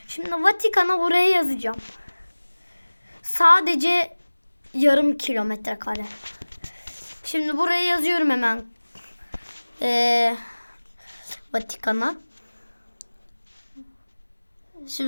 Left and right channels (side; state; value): both; inverted; correlation -1.00